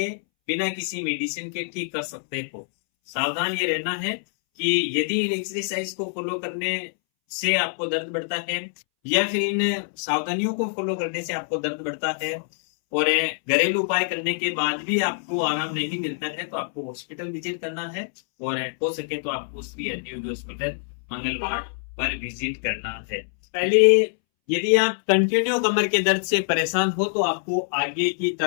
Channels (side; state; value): right; silent; 62 dB below the other